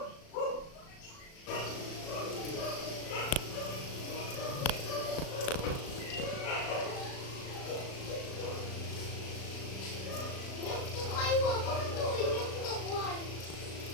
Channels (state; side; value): late; right; 36 ms